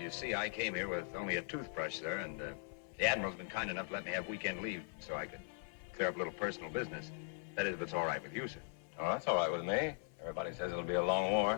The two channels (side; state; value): right; silent; 51 dB below the other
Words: see, I came here with only a toothbrush, sir, and the Admiral's been kind enough to let me have weekend leave so I could clear up a little personal business. That is, if it's all right with you, sir. Oh, that's all right with me. Everybody says it'll be a long